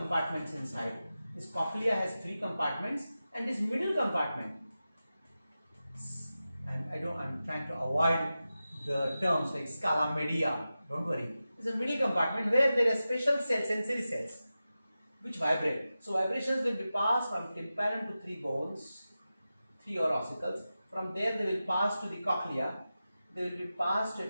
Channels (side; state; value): both; inverted; correlation -0.93